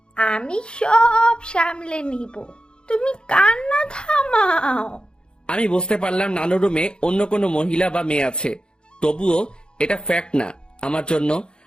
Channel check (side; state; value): right; late; 0.050 ms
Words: আমি সব সামলে নিব, তুমি কান্না থামাও। আমি বুঝতে পারলাম নানু রুমে অন্য কোনো মহিলা বা মেয়ে আছে, তবুও এটা ফ্যাক্ট না আমার জন্য।